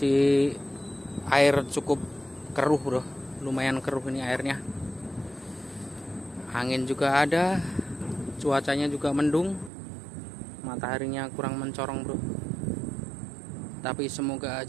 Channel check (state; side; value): drops out; left; at 9.7 s